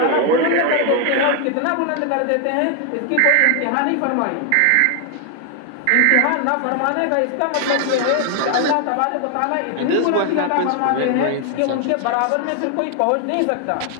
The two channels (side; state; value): both; different; correlation 0.00